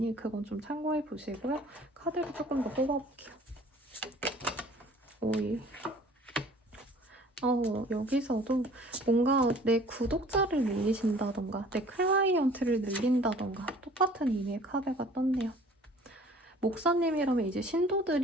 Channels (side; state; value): both; normal; correlation 0.51